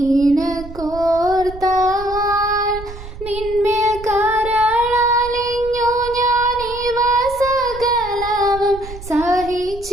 നിന്മേൽ കരളലിഞ്ഞു ഞാനിവ സകലവും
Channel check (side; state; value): right; noise; rumble, 14 dB below the sound